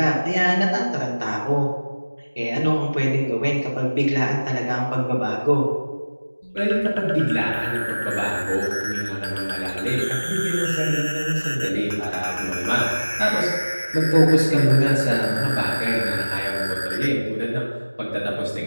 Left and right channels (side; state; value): both; inverted; correlation -1.00